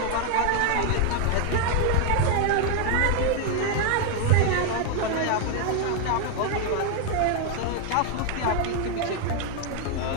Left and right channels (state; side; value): different; both; correlation 0.00